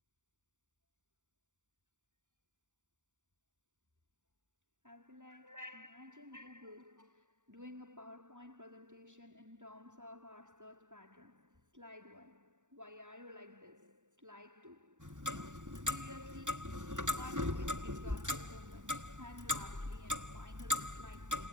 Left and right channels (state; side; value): late; left; 0.86 ms